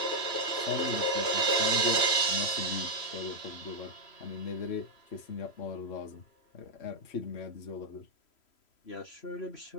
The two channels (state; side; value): late; right; 3.0 ms